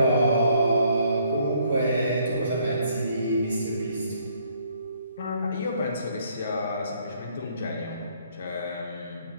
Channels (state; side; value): inverted; both; correlation -0.66